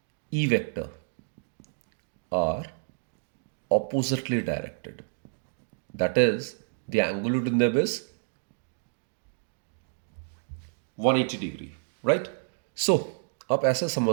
E vector are oppositely directed, that is the angle between them is 180 degree, right. So आप ऐसे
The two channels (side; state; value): left; silent; digital silence